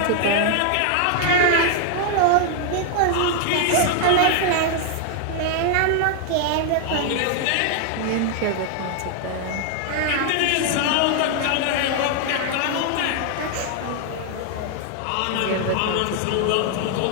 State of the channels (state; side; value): different; both; correlation 0.00